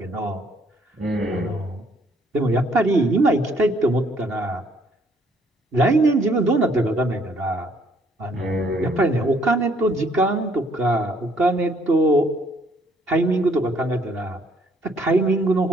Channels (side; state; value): both; normal; correlation 0.65